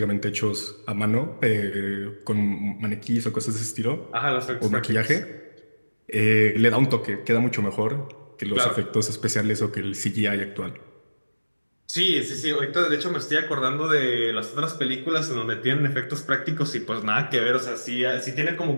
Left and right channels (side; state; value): both; inverted; correlation -1.00